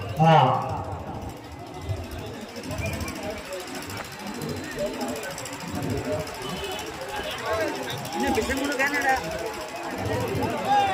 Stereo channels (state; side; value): identical; both; correlation 1.00